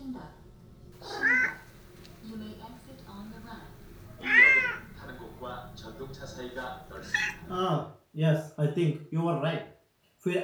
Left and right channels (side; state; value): both; identical; correlation 1.00